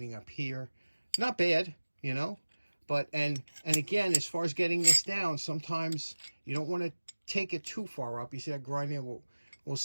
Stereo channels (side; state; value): both; inverted; correlation -1.00